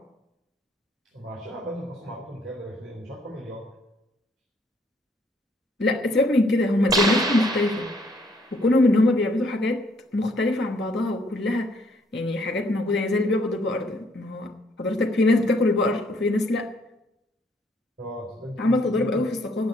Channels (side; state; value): both; normal; correlation 0.67